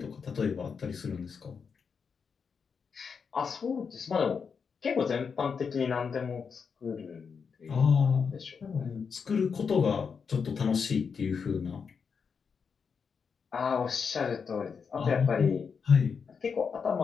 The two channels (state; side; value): quieter; right; 6.0 dB